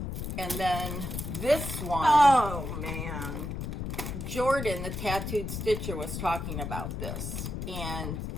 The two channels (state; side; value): noise; left; rumble, 5 dB below the sound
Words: And then this one. Oh, man. Jordan, the tattooed stitcher, was talking about this. And